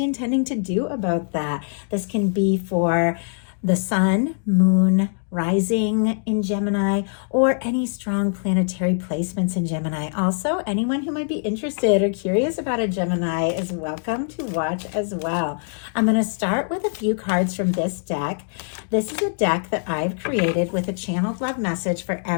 intending to do about that. This can be for the sun, moon, rising in Gemini, or any strong planetary placements in Gemini. Also, anyone who might be interested or curious about a Gemini is welcome to watch as well. I'm going to start with a few cards from this deck. This is a deck that I've created with a channeled love message for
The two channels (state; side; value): silent; right; digital silence